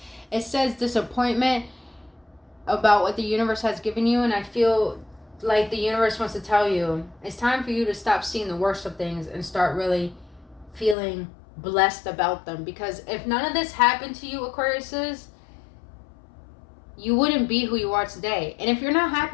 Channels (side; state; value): right; drops out; at 11.0 s